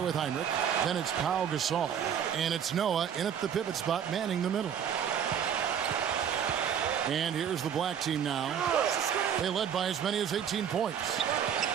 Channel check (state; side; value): quieter; left; 8.4 dB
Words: with Heinrich. Then it's Pau Gasol. And it's Noah in at the pivot spot, manning the middle. And here's the black team now. They led by as many as 18 points.